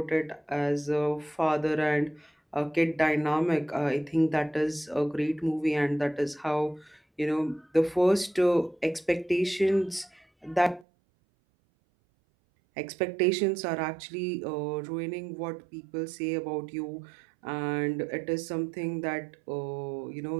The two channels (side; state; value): left; drops out; at 10.9 s